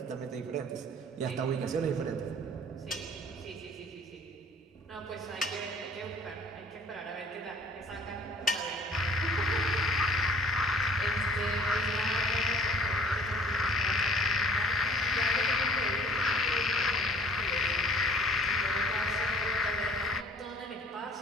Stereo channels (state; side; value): normal; both; correlation 0.52